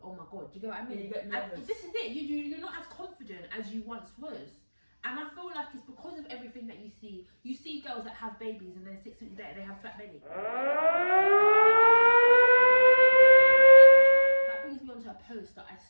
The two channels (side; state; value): both; inverted; correlation -1.00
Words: oh my god. Do you get what I mean? Yeah, you get nervous. And this is it. You're not as confident as you once was. And I feel like it's because of everything that you see. You see girls that have babies and then 6 weeks later they have flat belly. That brings me on to a post that I